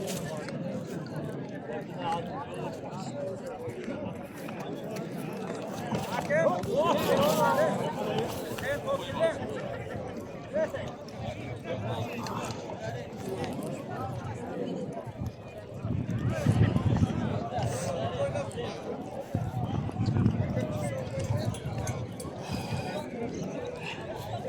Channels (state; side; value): identical; both; correlation 1.00